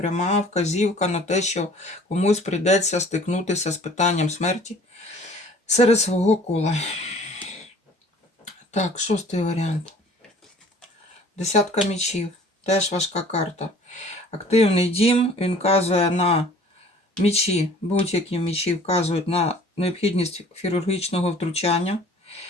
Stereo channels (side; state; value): both; normal; correlation 0.51